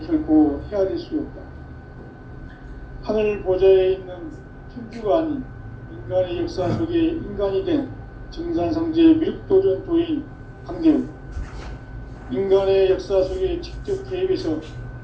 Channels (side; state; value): both; identical; correlation 1.00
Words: 결코 헤아릴 수 없다. 하늘 보좌에 있는 천주가 아닌 인간의 역사 속에 인간이 된 정산상제의 미륵도전 도인 강대우, 인간의 역사 속에 직접 개입해서